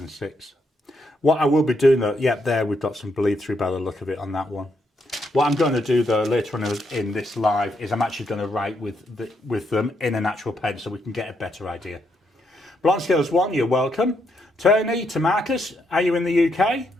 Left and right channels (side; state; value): both; normal; correlation 0.77